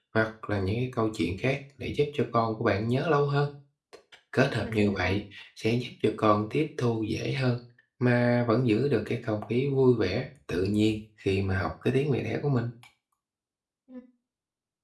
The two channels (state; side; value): identical; both; correlation 1.00